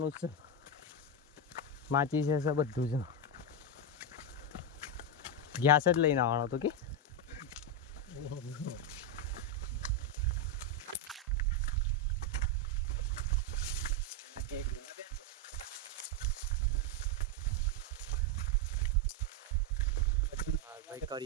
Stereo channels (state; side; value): normal; both; correlation 0.05